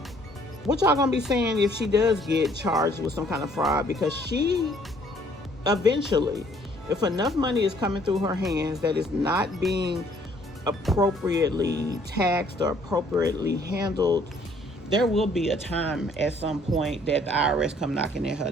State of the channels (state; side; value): normal; both; correlation 0.62